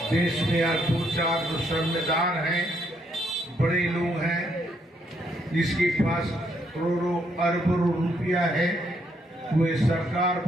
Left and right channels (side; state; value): both; normal; correlation 0.73